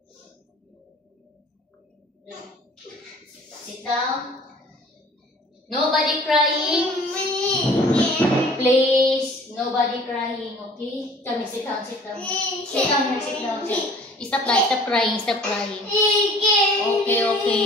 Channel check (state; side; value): normal; both; correlation 0.50